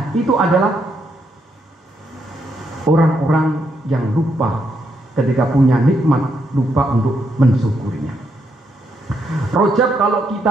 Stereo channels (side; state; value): both; normal; correlation 0.78